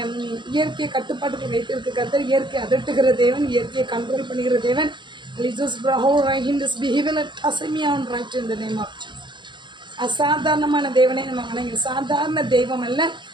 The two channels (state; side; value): late; left; 0.23 ms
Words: இயற்கையை கட்டுப்பாட்டுக்கு வைத்திருக்க கர்த்தர், இயற்கை அதட்டுகிற தேவன், இயற்கையை கண்ட்ரோல் பண்ணுகிற தேவன். அசாதாரணமான தேவனை நம்ம வணங்கி, சாதாரண தெய்வம் அல்ல,